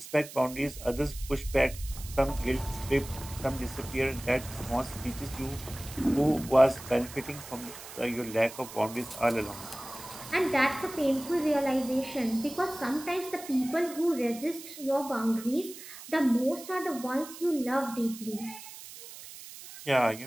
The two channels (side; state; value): right; noise; hiss, 14 dB below the sound